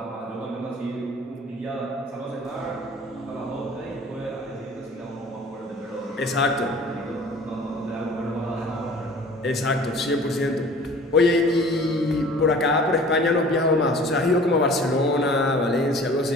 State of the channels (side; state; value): both; normal; correlation 0.47